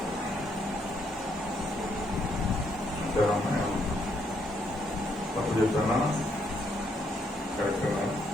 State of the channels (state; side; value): normal; both; correlation 0.74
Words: అంతేనా? తప్పు చెప్పానా? కరెక్టేనా?